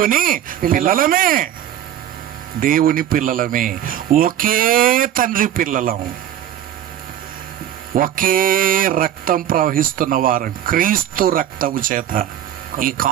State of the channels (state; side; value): quieter; left; 11.1 dB